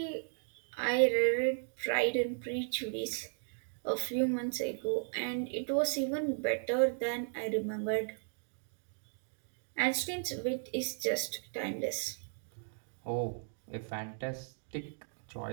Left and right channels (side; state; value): left; silent; digital silence